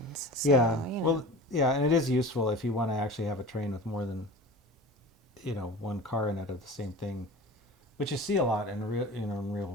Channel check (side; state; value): both; normal; correlation 0.36